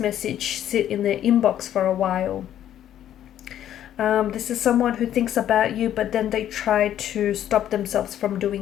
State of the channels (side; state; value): right; quieter; 11.2 dB